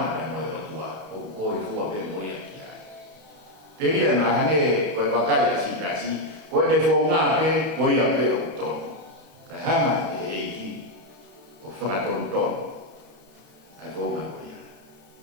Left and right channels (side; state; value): left; late; 31 ms